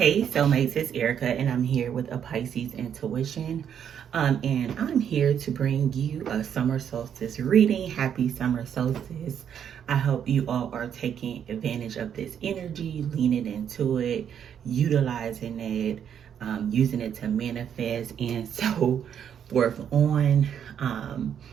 soulmates, it's Erika, and I'm here with a Pisces intuition. And I'm here to bring you a summer solstice reading. Happy summer solstice. I hope you all are taking advantage of this energy, leaning into it, utilizing it, using it to manifest, and so forth on.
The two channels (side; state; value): left; quieter; 8.6 dB